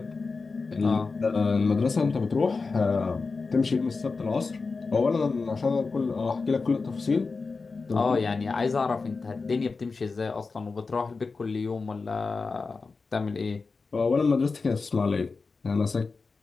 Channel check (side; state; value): right; quieter; 4.3 dB